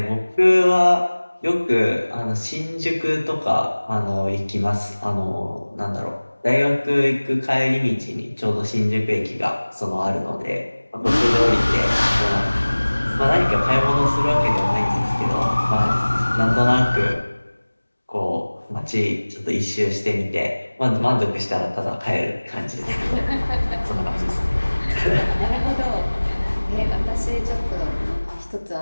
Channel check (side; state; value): both; inverted; correlation -1.00